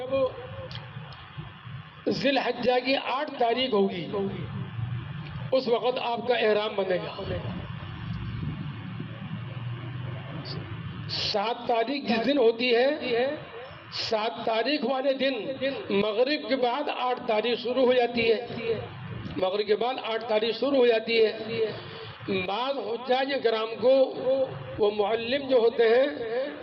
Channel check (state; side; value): identical; both; correlation 1.00